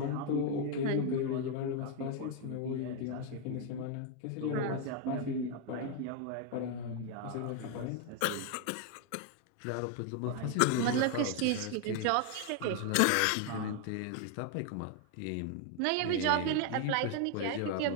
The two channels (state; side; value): different; both; correlation 0.01